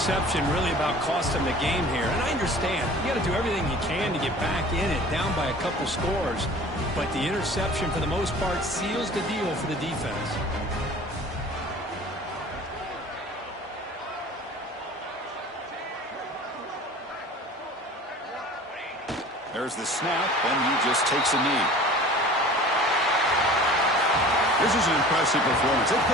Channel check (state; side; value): normal; both; correlation 0.43